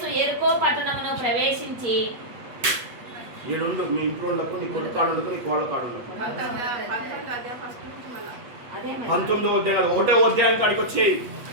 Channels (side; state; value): left; late; 8.3 ms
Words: యెరికో పట్టణమును ప్రవేశించి ఏడుండు మీ ఇంట్లో ఉండకు, నీ కొడుకు కాడు ఉండకు, నీ కోళ్ళ కాడు ఉండకు. 19వ అధ్యాయం 1వ అధ్యాయం కాడికి వచ్చాయి.